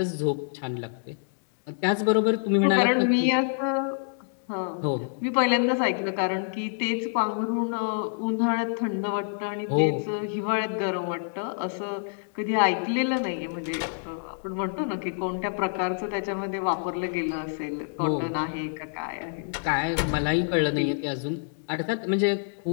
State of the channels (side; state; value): right; silent; digital silence